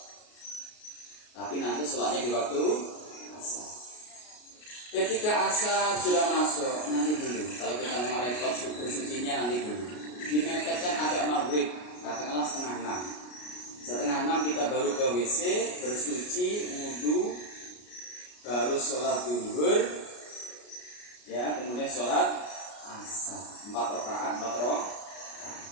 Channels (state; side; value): late; right; 33 ms